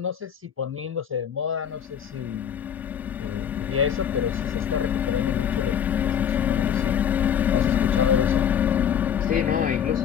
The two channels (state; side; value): quieter; right; 8.6 dB